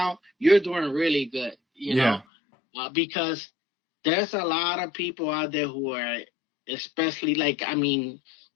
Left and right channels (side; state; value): right; drops out; at 2.2 s